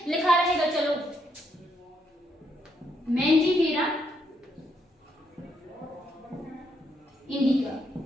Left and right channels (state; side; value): normal; both; correlation 0.76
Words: लिखा रहेगा चलो मैंजीफेरा इंडिका,